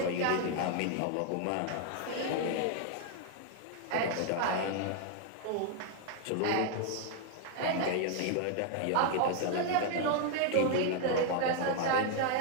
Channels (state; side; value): different; both; correlation 0.00